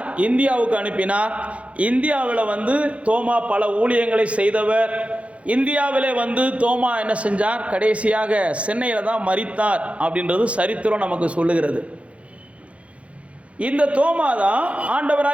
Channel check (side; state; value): left; late; 0.063 ms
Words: இந்தியாவுக்கு அனுப்பினார். இந்தியாவில் தோமா பல ஊழியங்களை செய்தவர். இந்தியாவிலே தோமா என்ன செஞ்சார்? கடைசியாக சென்னையில் தான் மரித்தார் அப்படின்றது சரித்திரம் நமக்கு சொல்லுகிறது. இந்த தோமா தான்